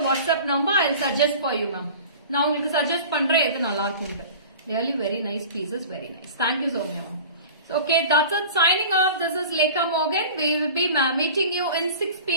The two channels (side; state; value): both; inverted; correlation -0.38